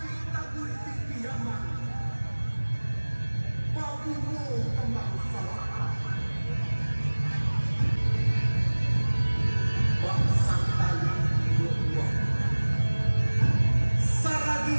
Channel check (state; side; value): inverted; both; correlation -1.00